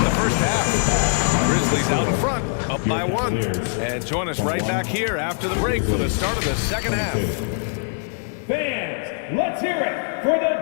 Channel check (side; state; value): right; silent; digital silence